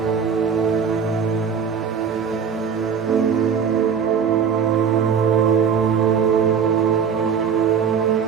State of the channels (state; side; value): quieter; left; 6.8 dB